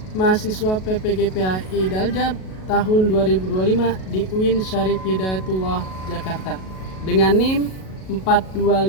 mahasiswa PPGPAI Daljab tahun 2025 di UIN Syarif Hidayatullah Jakarta dengan NIM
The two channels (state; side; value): late; right; 37 ms